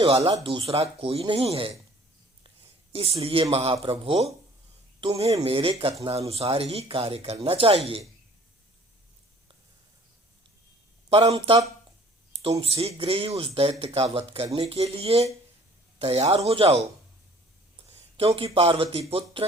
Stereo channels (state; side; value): normal; both; correlation 0.53